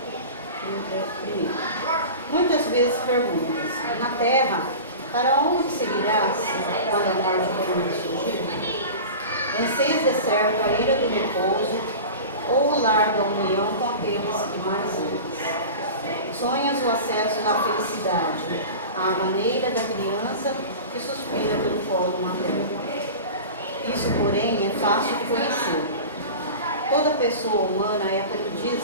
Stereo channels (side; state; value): both; inverted; correlation -0.33